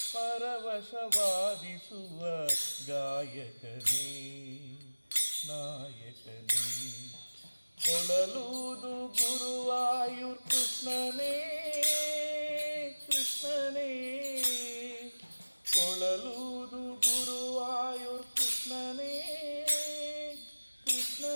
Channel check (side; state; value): both; inverted; correlation -1.00